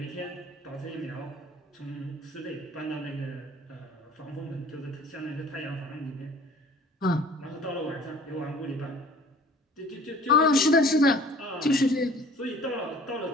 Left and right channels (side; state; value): both; normal; correlation 0.49